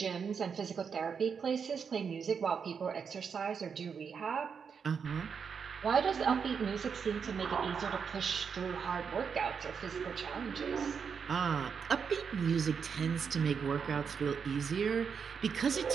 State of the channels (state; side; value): quieter; left; 6.4 dB